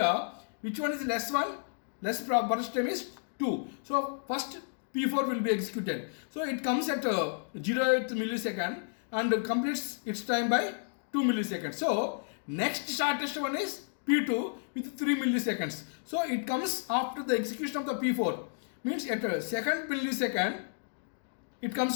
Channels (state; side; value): silent; right; digital silence